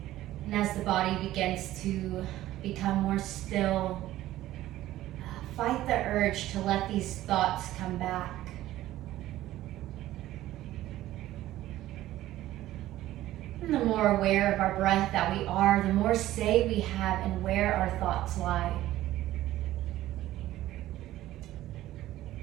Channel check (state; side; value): quieter; left; 14.8 dB